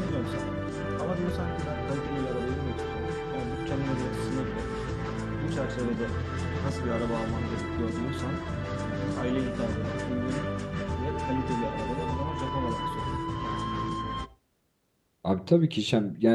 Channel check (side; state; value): both; identical; correlation 1.00